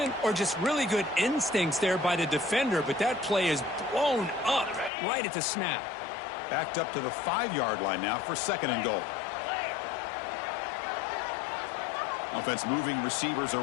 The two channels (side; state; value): right; drops out; at 4.9 s